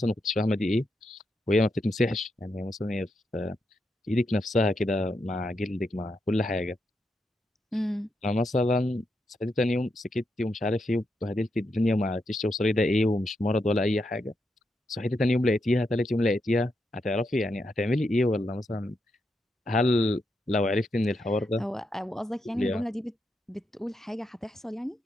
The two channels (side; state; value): both; normal; correlation 0.83